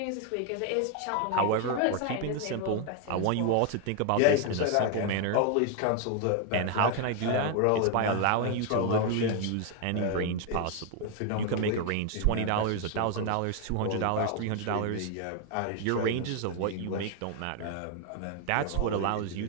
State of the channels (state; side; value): different; both; correlation 0.01